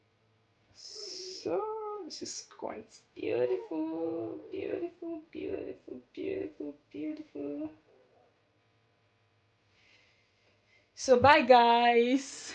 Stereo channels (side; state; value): both; identical; correlation 1.00